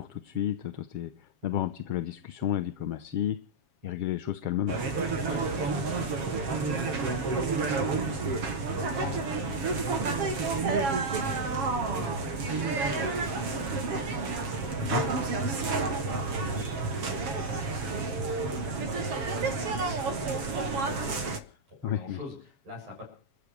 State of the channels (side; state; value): left; late; 7.3 ms